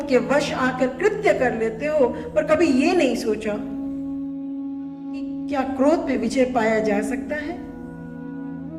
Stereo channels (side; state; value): both; identical; correlation 1.00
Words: के वश आकर कृत्य कर लेते हो, पर कभी ये नहीं सोचा कि क्या क्रोध पे विजय पाया जा सकता है?